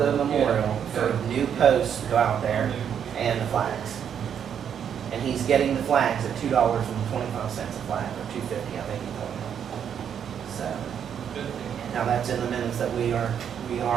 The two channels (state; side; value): quieter; left; 8.4 dB